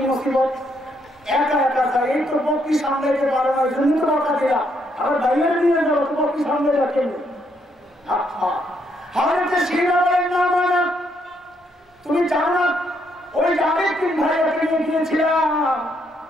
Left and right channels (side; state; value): both; normal; correlation 0.74